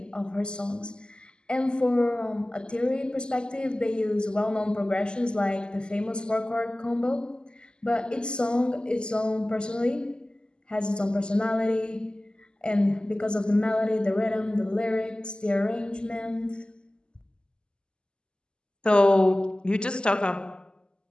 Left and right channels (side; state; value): right; late; 0.048 ms